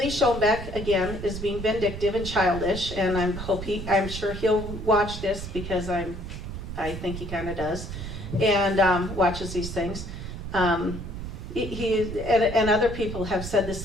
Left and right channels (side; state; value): right; noise; rumble, 8 dB below the sound